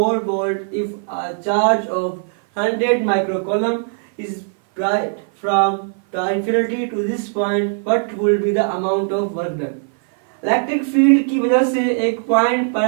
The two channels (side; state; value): left; silent; 57 dB below the other